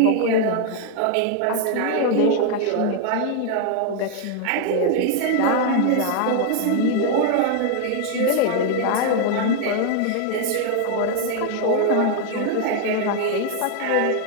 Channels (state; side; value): different; both; correlation 0.00